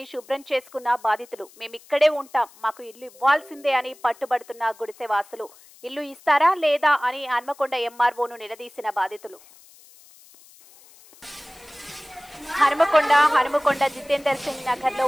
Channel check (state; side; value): noise; left; hiss, 25 dB below the sound